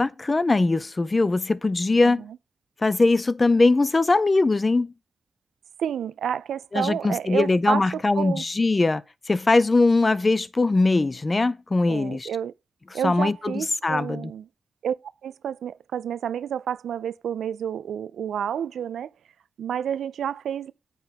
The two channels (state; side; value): normal; both; correlation 0.93